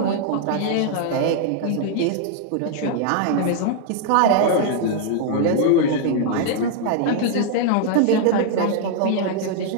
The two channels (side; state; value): both; different; correlation 0.00